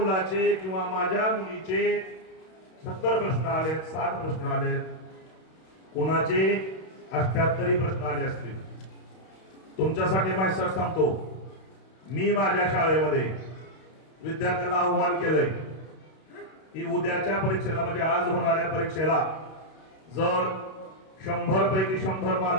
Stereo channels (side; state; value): right; late; 32 ms